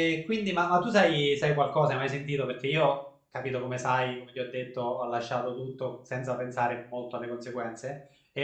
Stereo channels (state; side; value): identical; both; correlation 1.00